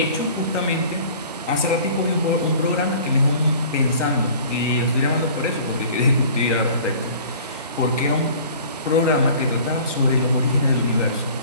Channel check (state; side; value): inverted; both; correlation -0.47